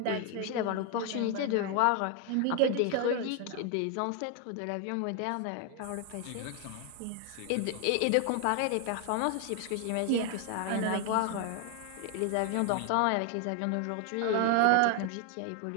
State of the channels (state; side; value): different; both; correlation 0.01